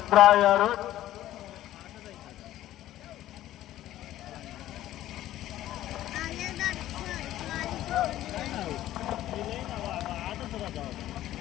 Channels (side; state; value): right; quieter; 13.7 dB